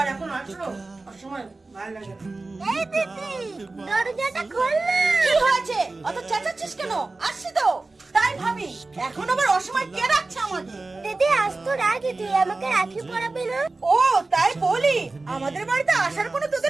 এখন আসলো অসময় ভালো লাগে না। এই দিদি দরজাটা খোল না। কি হয়েছে অত চেঁচাচ্ছিস কেন? আসছি তো। তাই ভাবি এখন আবার অসময় কে রাখছে আমাদের? দিদি আজ তো রাখি, তুই আমাকে রাখি পরাবি না? ও তাই বলি, আমাদের বাড়িতে আসার কোনো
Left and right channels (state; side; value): quieter; left; 3.4 dB